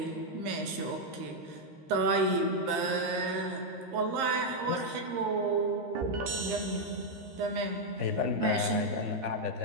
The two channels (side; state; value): left; late; 13 ms